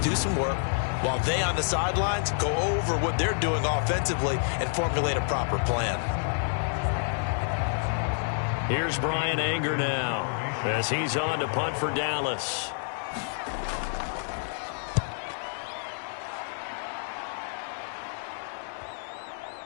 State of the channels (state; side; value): silent; right; digital silence